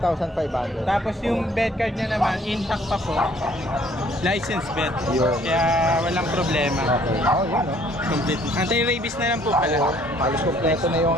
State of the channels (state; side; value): normal; both; correlation 0.60